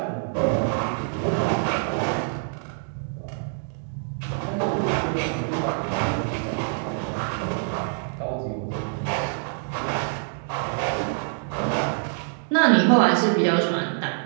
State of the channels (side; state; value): left; silent; 57 dB below the other